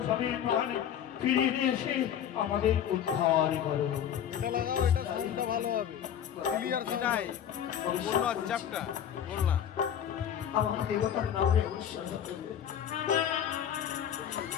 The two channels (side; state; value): right; quieter; 9.5 dB